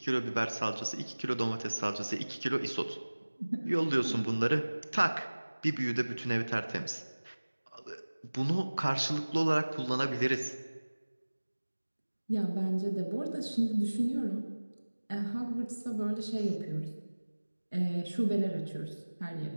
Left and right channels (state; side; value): inverted; both; correlation -1.00